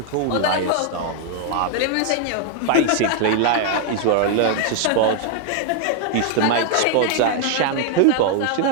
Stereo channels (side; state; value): both; different; correlation 0.00